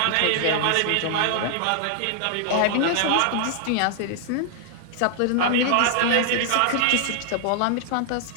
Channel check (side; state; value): both; different; correlation -0.01